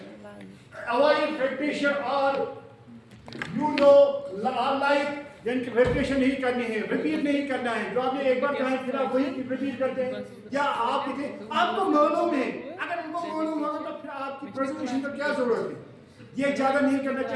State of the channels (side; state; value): both; identical; correlation 1.00